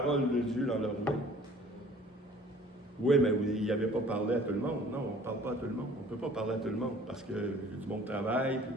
de Dieu dans leur main. Oui, mais il n'avait pas parlé à tout le monde. Non, on ne parle pas à tout le monde. On ne peut pas parler à tout le monde parce que du monde travaille et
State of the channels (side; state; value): both; normal; correlation 0.51